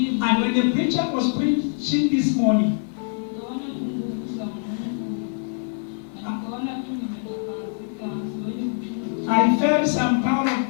And when the preacher was preaching this morning, I felt some power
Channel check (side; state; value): right; silent; 58 dB below the other